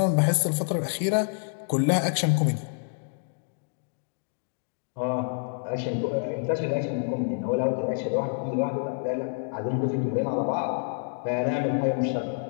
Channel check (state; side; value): silent; right; 60 dB below the other